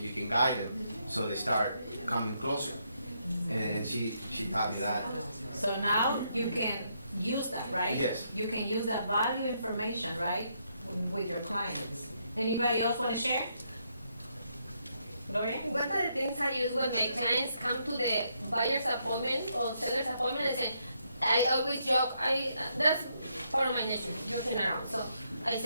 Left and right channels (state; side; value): inverted; both; correlation -0.76